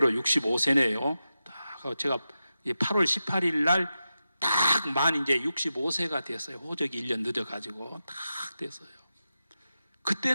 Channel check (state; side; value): inverted; both; correlation -0.91